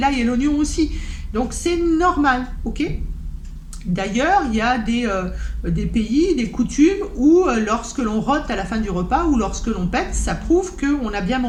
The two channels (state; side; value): identical; both; correlation 1.00